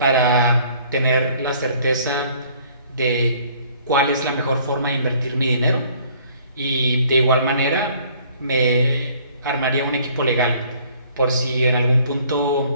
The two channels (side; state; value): both; inverted; correlation -0.58